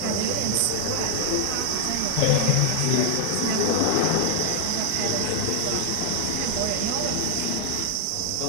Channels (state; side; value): different; both; correlation 0.00